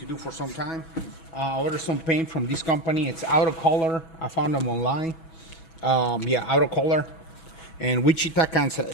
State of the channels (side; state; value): right; late; 6.2 ms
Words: do for some time. I ordered some paint from this company. It's Color. I found them online. Color and Wichita,